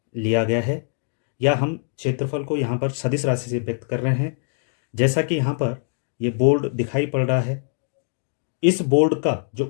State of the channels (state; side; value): silent; right; 63 dB below the other